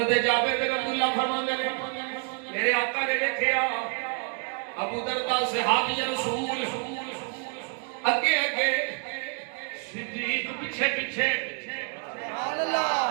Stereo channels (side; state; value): left; quieter; 38.4 dB